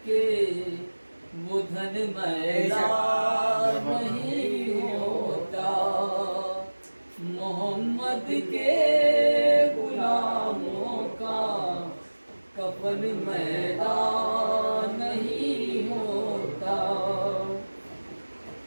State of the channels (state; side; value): inverted; both; correlation -1.00